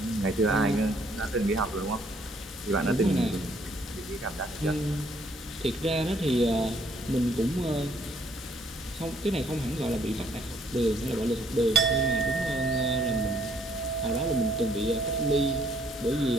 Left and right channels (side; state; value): both; normal; correlation 0.65